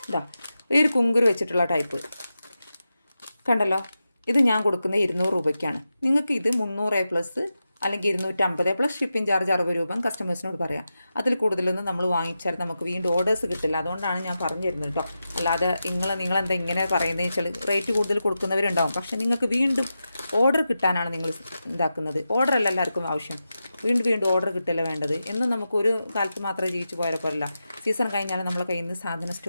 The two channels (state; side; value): inverted; both; correlation -0.90